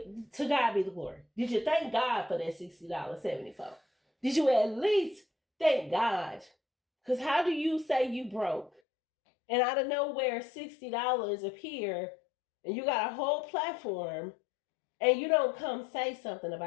to God be the glory. Did you thank God for that $60.74? Did you at least thank God? Because how do you say you broke and out of nowhere $60 appear and you got a whole platform and you don't come say something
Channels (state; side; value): drops out; right; at 8.7 s